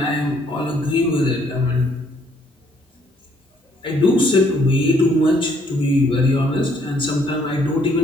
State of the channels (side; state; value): both; normal; correlation 0.66